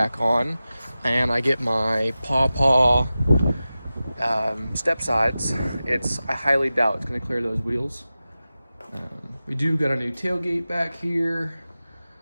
on and I get my paw step sides, I highly doubt it's going to clear those wheels. We do got a new tailgate back here,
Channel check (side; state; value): both; inverted; correlation -0.95